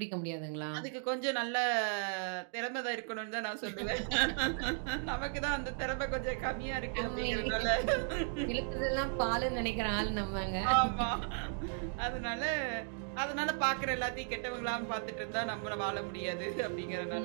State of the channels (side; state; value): left; silent; 54 dB below the other